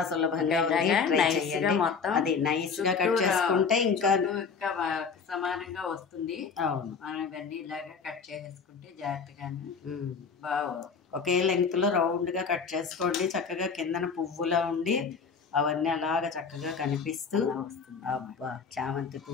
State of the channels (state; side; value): quieter; right; 5.6 dB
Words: సులభంగా ఉంది, ట్రై చేయండి. అది నైస్గా కట్ చేసుకుంటే ఇంకా సమానంగా వస్తుంది. అవును, మనం ఇవన్నీ ఇలాగా కట్ చేసేసుకుంటే జాగ్రత్తగానే బాగా ఒకే లెంగ్త్లో రౌండ్గా కట్ చేసుకోండి. చక్కగా కిందన పువ్వులా ఉండి అవన్నీ అలాగ చక్కగా కనిపిస్తూ వస్తుంది. అబ్బా, చామంతి